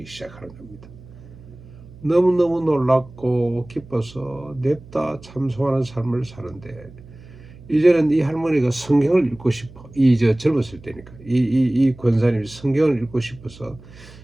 시작하는 겁니다. 너무너무 놀랍고 기뻐서 냅다 참송하는 삶을 사는데 이제는 이 할머니가 성경을 읽고 싶어. 젊었을 때니까 이 권사님이 성경을 읽고 싶어서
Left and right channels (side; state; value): right; noise; hum, 20 dB below the sound